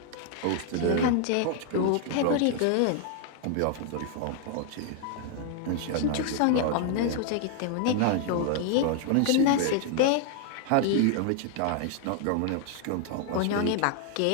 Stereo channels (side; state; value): both; different; correlation 0.00